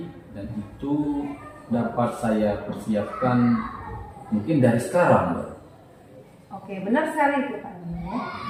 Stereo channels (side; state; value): both; identical; correlation 1.00